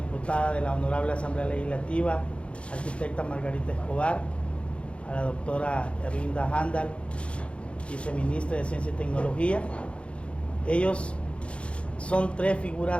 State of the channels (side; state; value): right; late; 0.060 ms